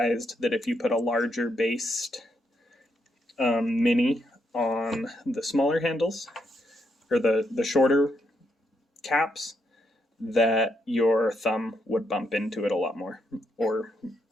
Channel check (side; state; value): both; normal; correlation 0.78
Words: that if you put a larger based mini on the smaller handles, or the shorter caps, that your thumb would bump into it a lot more, or